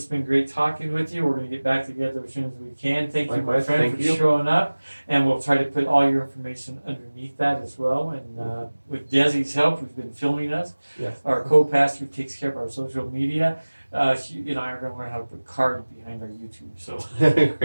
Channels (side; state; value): both; inverted; correlation -1.00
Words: been great talking with you. We're going to get back together as soon as we can. Thank you, my friend, for showing up. And we'll try to put all your information underneath that as well. And with Desi's help, who's been filming us, Yes. our co-pastor takes care of our social media. She and I are going to learn how to put cards behind our YouTube. So,